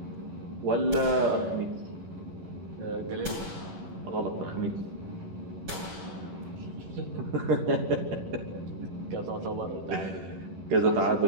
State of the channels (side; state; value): left; late; 11 ms